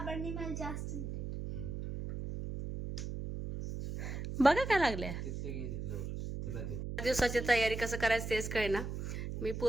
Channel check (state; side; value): noise; right; hum, 5 dB below the sound